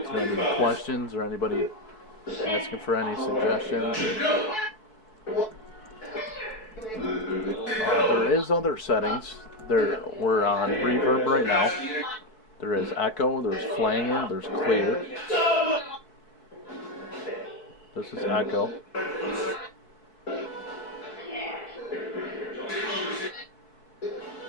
Is there any questions or anybody asking for any suggestions? There is other settings. We're on reverb right now, There is echo, there's flanger, there's clear. This is echo.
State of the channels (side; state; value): right; late; 4.6 ms